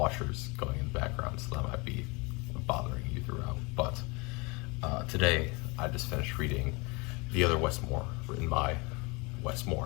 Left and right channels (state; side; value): quieter; right; 27.6 dB